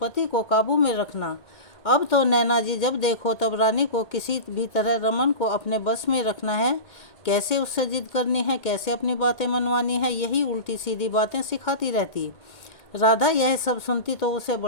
को काबू में रखना। अब तो नैना जी जब देखो तब रानी को किसी भी तरह रमन को अपने बस में रखना है, कैसे उससे जिद करनी है, कैसे अपनी बातें मनवानी है, यही उल्टी सीधी बातें सिखाती रहती। राधा यह सब सुनती तो उसे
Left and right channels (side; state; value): right; late; 2.2 ms